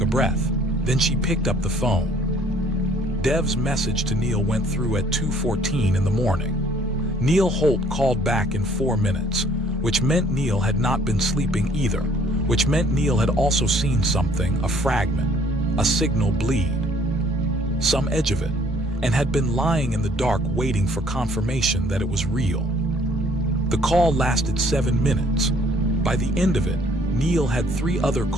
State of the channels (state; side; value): normal; both; correlation 0.60